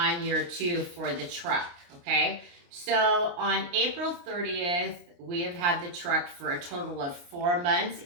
year two for the truck, okay? So on April 30th, we have had the truck for a total of 4 months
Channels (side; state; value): left; late; 29 ms